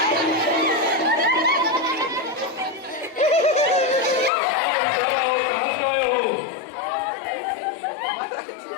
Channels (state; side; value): drops out; right; at 4.3 s